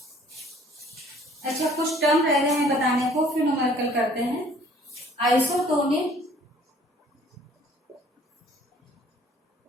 अच्छा, कुछ टर्म रह गए हैं बताने को, फिर न्यूमेरिकल करते हैं। आइसोटोनिक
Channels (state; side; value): normal; both; correlation 0.55